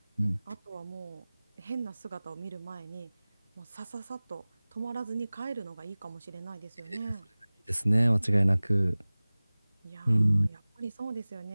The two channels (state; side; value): inverted; both; correlation -0.99